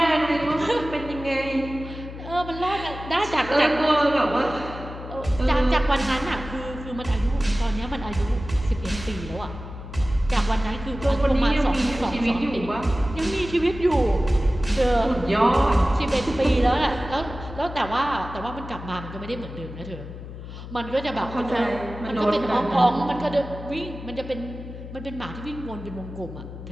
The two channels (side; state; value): left; noise; hum, 11 dB below the sound